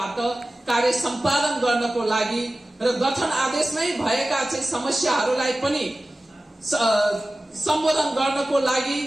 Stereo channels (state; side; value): normal; both; correlation 0.96